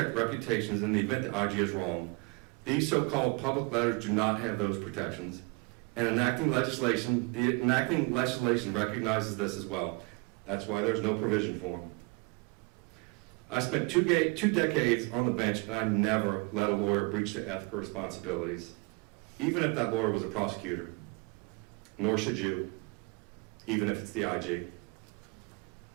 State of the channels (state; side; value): quieter; left; 29.5 dB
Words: reputations in the event the IG is wrong. These so-called public letters do not have those protections. And the enacting legislation recognizes this as well. That's why there's no provision for them. I spent two decades on the bench, and I never let a lawyer breach their ethical responsibilities, even if that lawyer was a prosecutor. Nor should you, even if it's the IG.